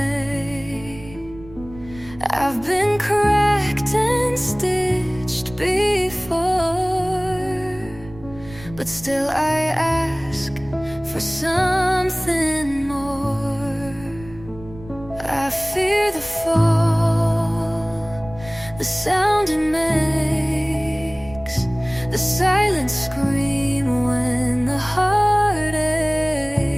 I've been cracked and stitched before, but still I ask for something more. I fear the fall, the sound it makes, the silent scream when the heart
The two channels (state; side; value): noise; right; rumble, 18 dB below the sound